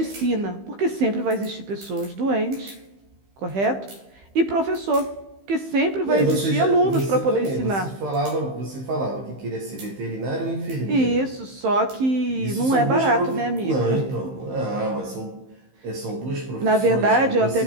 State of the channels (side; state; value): left; late; 15 ms